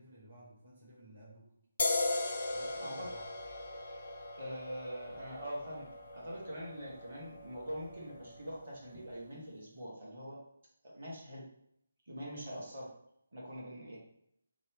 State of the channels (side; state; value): both; inverted; correlation -0.86